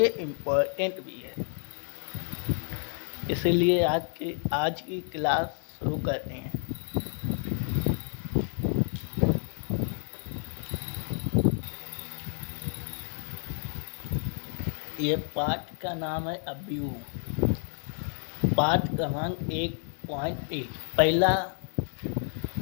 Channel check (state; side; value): silent; right; 58 dB below the other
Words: इम्पोर्टेंट भी है। इसीलिए आज की क्लास शुरू करते हैं। ये पाठ का नाम है अवयव। पाठ क्रमांक 1.1 पहला